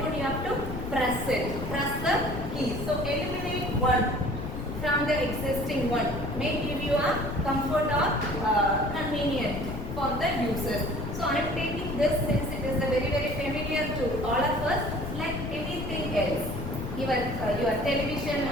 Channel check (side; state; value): left; noise; rumble, 6 dB below the sound